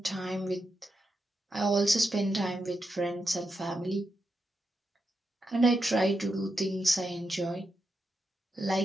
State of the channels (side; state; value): both; normal; correlation 0.86